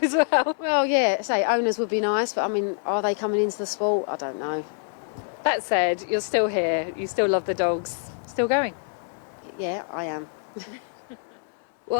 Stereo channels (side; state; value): right; silent; 61 dB below the other